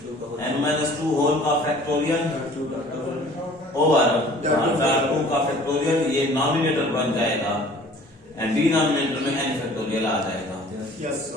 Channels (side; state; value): both; normal; correlation 0.50